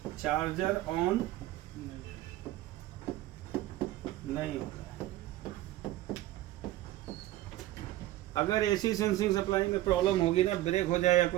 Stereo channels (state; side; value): quieter; left; 15.5 dB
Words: चार्जर ऑन नहीं होता है। अगर एसी सेंसिंग सप्लाई में प्रॉब्लम होगी ना, ब्रेक हो जाए या